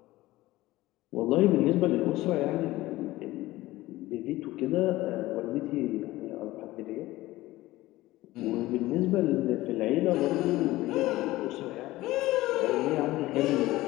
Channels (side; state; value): right; quieter; 17.6 dB